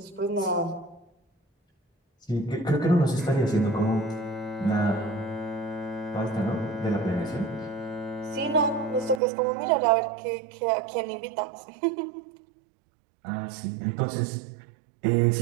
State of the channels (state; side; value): drops out; left; at 9.2 s